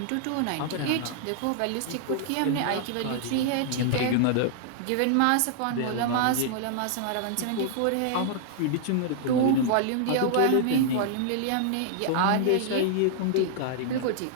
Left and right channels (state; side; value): different; both; correlation -0.01